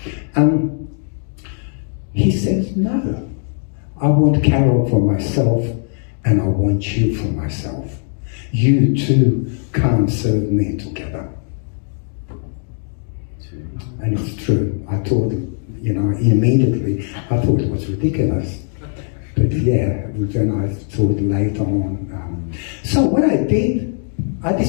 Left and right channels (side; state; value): right; silent; 58 dB below the other